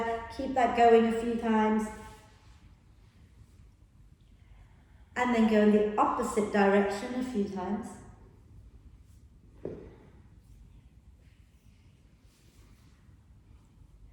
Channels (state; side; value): identical; both; correlation 1.00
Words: Keep that going a few times. And then go in the opposite direction a few times.